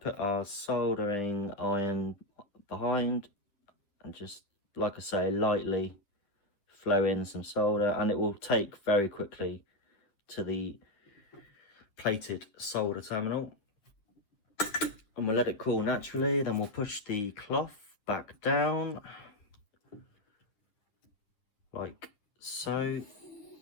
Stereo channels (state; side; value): late; right; 9.9 ms